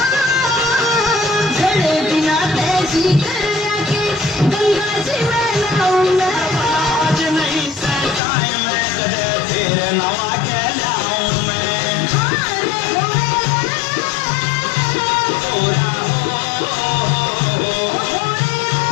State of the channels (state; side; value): drops out; right; at 8.2 s